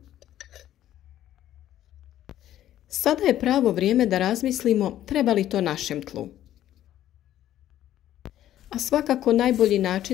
Sada je pravo vrijeme da razmislimo treba li to našem tlu. A svakako najbolji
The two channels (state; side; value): quieter; right; 12.4 dB